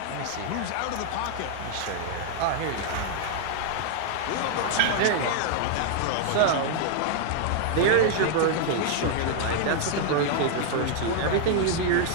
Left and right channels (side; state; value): both; different; correlation 0.00